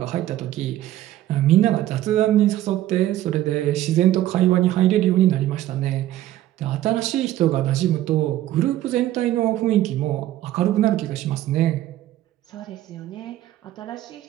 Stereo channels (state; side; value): quieter; left; 13.8 dB